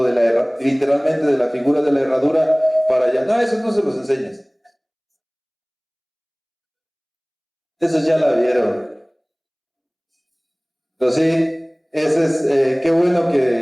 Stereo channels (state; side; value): identical; both; correlation 1.00